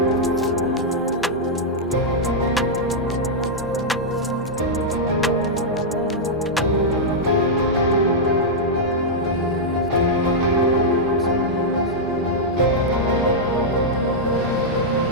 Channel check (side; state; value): both; normal; correlation -0.07